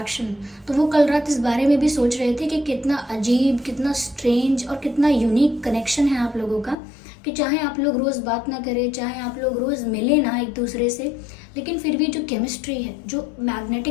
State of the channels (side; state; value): right; drops out; at 6.8 s